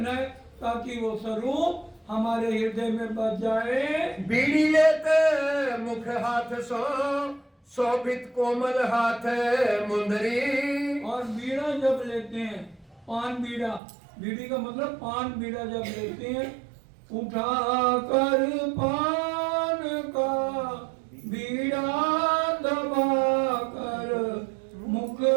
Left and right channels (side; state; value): left; drops out; at 13.8 s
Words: है ताकि वो स्वरूप हमारे हृदय में बच जाए। बीड़ी लेते मुख हाथ सो शोभित कोमल हाथ मुंदरी, और बीड़ा जब लेते हैं, पान बीड़ा, बीड़ी का मतलब पान बीड़ा जब लेते हैं, उठा कर पान का बीड़ा दबा कर मुख